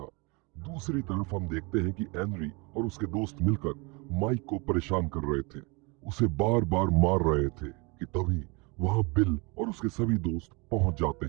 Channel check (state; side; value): quieter; left; 28.8 dB